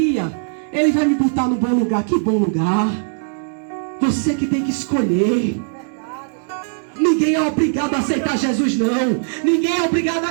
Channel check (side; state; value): left; silent; digital silence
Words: Ele vai me botar no bom lugar. Que bom lugar. Você que tem que escolher. Ninguém é obrigado a aceitar Jesus, não. Ninguém é obrigado